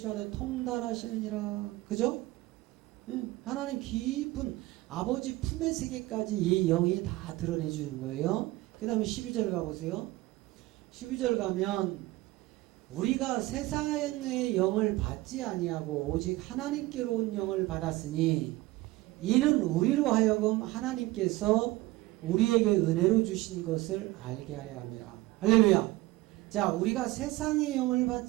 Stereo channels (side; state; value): left; quieter; 18.8 dB